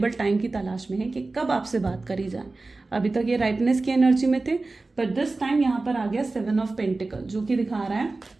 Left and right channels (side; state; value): left; quieter; 3.4 dB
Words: टाइम की तलाश में है कि कब आपसे बात करी जाए। अभी तक ये राइपनेस की एनर्जी में थे, पर दिस टाइम यहाँ पर आ गया 7 ऑफ पेंटिकल, जो कि दिखा रहा है,